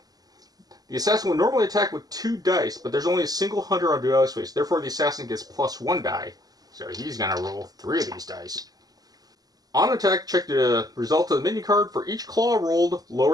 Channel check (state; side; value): late; left; 0.18 ms